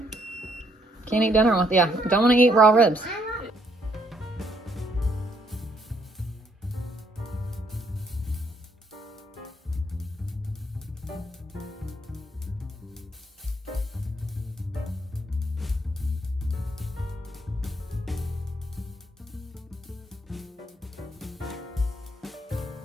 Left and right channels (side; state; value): both; normal; correlation 0.70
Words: Can't eat dinner with, yeah. Don't want to eat raw ribs.